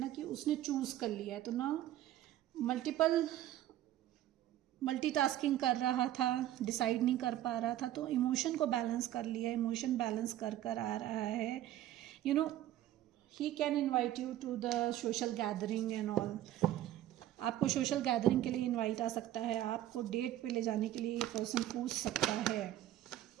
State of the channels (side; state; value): left; quieter; 13.3 dB